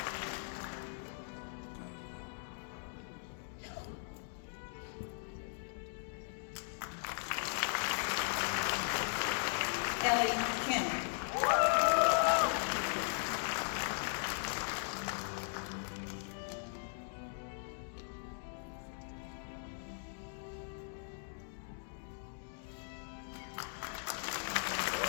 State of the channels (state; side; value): silent; right; digital silence